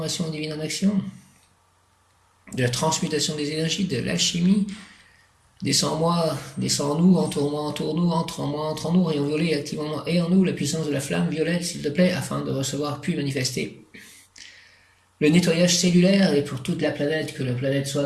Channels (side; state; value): both; identical; correlation 1.00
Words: divine en action, de la transmutation des énergies, de l'alchimie. Descends en moi, descends en nous, entoure-moi, entoure-nous, entre en moi, entre en nous, rayon violet, active en moi et en nous la puissance de la flamme violette, s'il te plaît, afin de recevoir puis manifester le nettoyage cellulaire et pour toute la planète, que la planète